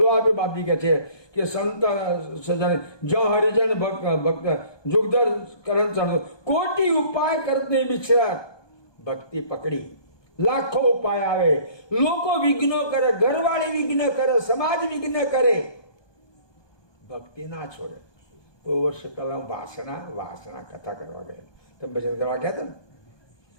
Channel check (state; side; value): late; right; 1.2 ms